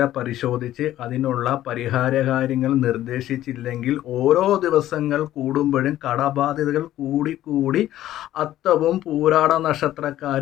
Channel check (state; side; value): quieter; right; 13.4 dB